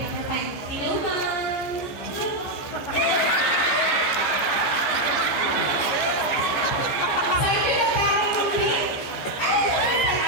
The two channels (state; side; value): late; right; 15 ms